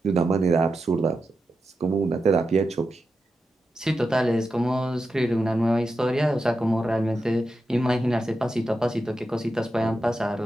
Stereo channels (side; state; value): both; normal; correlation 0.89